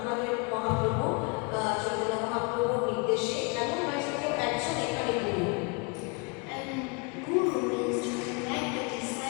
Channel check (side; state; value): right; quieter; 31.9 dB